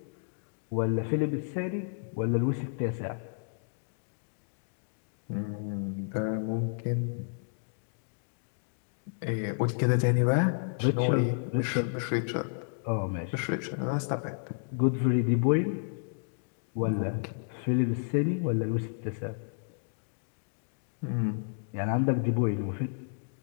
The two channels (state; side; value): silent; right; digital silence